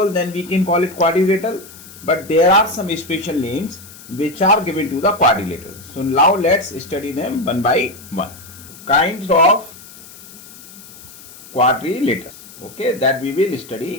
then we can call it quadrilateral, but there are some special names which are given to the quadrilateral. So now let's study them one by one. Kinds of quadrilaterals, okay, that we will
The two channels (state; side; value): noise; left; hiss, 19 dB below the sound